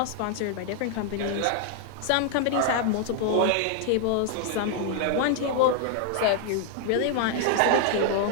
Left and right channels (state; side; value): different; both; correlation 0.00